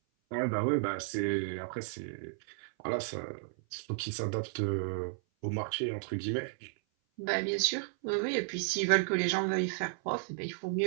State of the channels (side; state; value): left; silent; 56 dB below the other